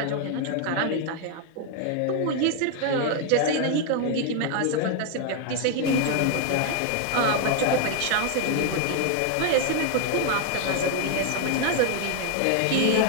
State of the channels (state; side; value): different; both; correlation 0.00